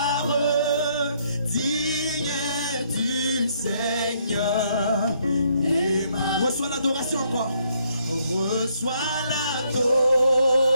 Digne es-tu, Seigneur, Emmanuel. Reçois l'adoration encore. Reçois l'adoration.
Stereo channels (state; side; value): inverted; both; correlation -0.71